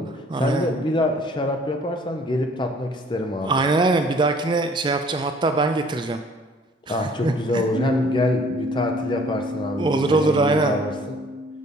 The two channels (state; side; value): normal; both; correlation 0.56